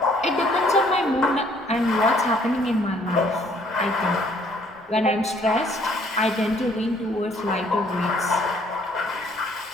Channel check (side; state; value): both; normal; correlation 0.62